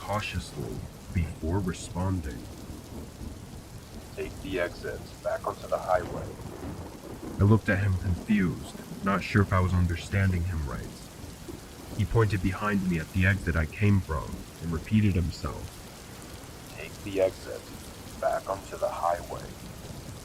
before responding. "Take the exit back onto the highway." I looked at him confused, not sure if I was understanding him right. He pointed behind me at the exit I came from and repeated himself. Take the exit, back onto the highway.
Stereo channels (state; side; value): identical; both; correlation 1.00